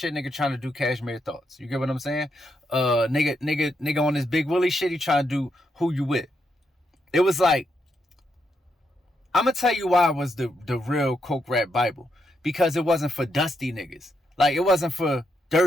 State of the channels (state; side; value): normal; both; correlation 0.80